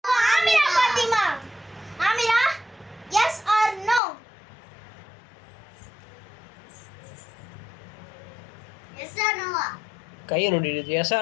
Amira Fatima. Amira, yes or no? Yes or no? கையை நோண்டிடுச்சு. எஸ்ஸா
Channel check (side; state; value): right; drops out; at 4.0 s